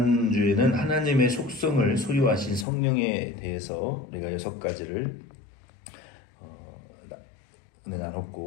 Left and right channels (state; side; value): drops out; right; at 2.7 s